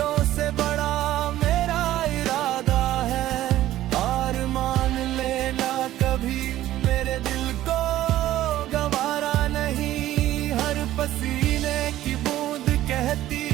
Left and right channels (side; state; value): left; quieter; 14.0 dB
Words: से बड़ा मेरा इरादा है। हार मान लेना कभी मेरे दिल को गवारा नहीं। हर पसीने की बूंद कहती